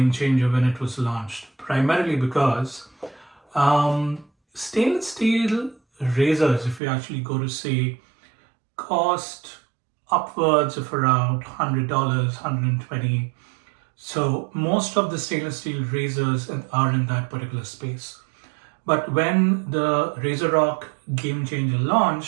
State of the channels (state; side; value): drops out; left; at 6.8 s